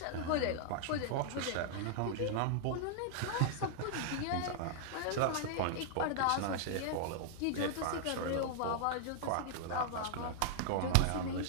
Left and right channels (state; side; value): different; both; correlation 0.00